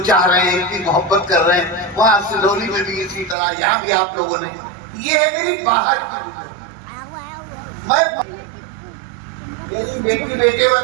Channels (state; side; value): drops out; left; at 3.4 s